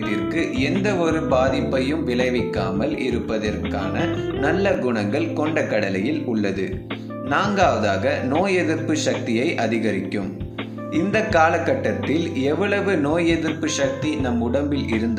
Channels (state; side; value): identical; both; correlation 1.00